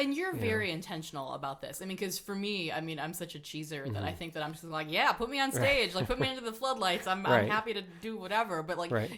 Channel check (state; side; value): identical; both; correlation 1.00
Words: you're very intentional about this. I mean, because for me, I'm such a cheeser that I think that I'm just like, put me on stage, like put me under the floodlights. I'm happy to do whatever. But like